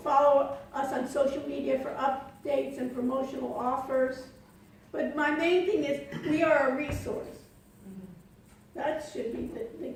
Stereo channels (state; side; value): identical; both; correlation 1.00